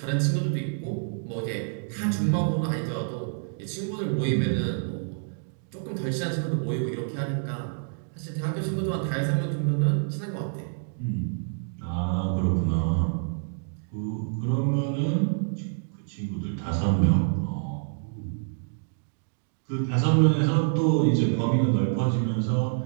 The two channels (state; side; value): silent; left; digital silence